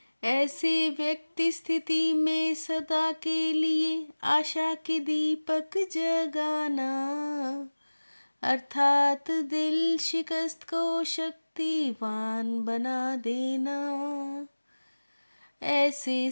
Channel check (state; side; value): inverted; both; correlation -1.00